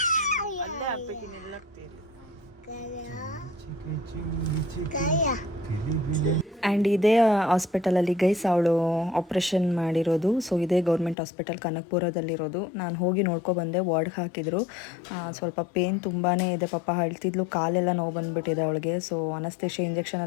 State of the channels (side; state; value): right; drops out; at 11.2 s